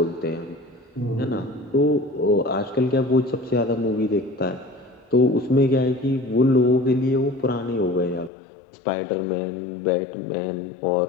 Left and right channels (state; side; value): drops out; right; at 8.3 s